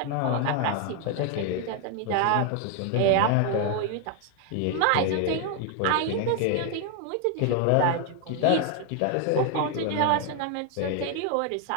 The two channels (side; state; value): both; different; correlation 0.01